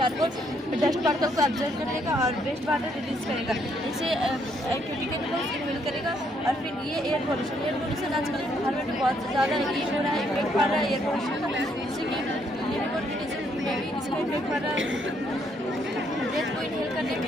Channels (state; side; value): normal; both; correlation 0.71